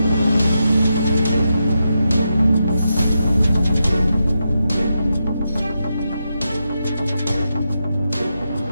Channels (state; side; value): inverted; both; correlation -0.86